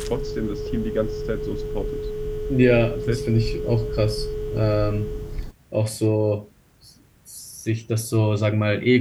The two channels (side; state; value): both; identical; correlation 1.00